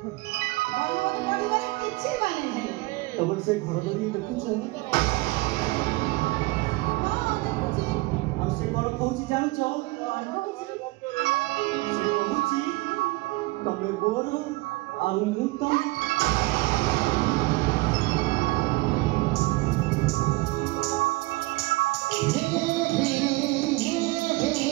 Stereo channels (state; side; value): quieter; left; 22.5 dB